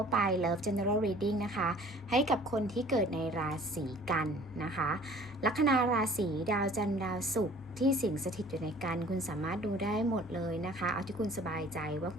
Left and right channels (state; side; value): normal; both; correlation 0.50